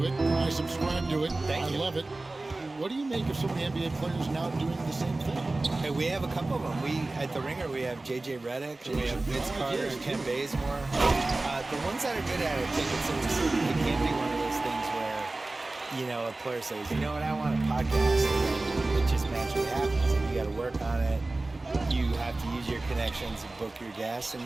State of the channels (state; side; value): quieter; left; 3.0 dB